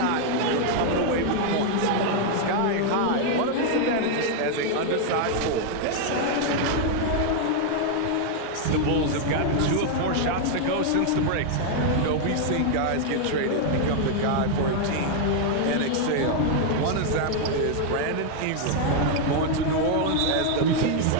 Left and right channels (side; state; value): both; different; correlation 0.00